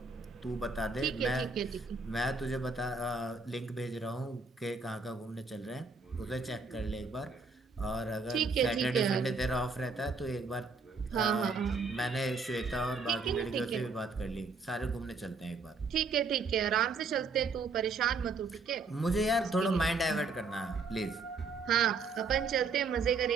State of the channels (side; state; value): left; quieter; 4.1 dB